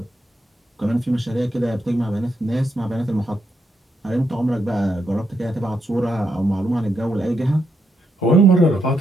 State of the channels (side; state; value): both; normal; correlation 0.80